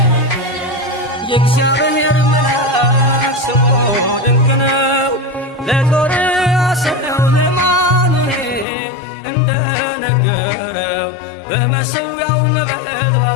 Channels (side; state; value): right; drops out; at 8.7 s